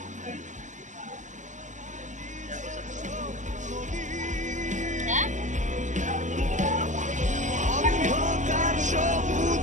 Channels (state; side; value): late; left; 0.36 ms